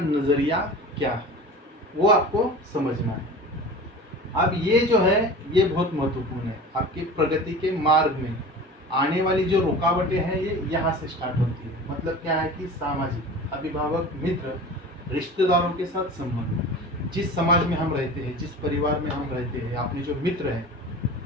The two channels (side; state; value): both; normal; correlation 0.36